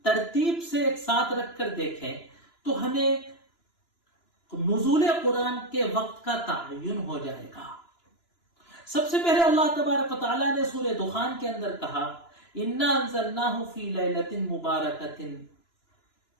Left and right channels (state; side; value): late; right; 2.9 ms